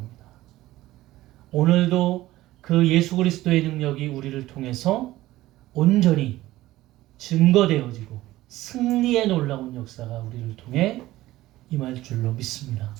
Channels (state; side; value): quieter; left; 16.4 dB